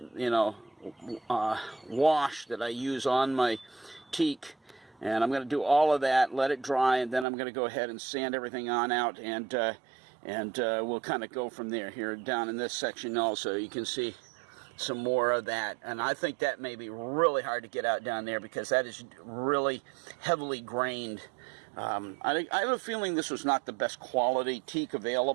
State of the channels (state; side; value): drops out; left; at 7.2 s